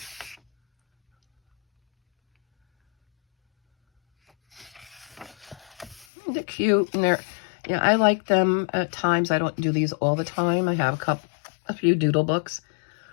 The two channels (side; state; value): right; drops out; at 6.1 s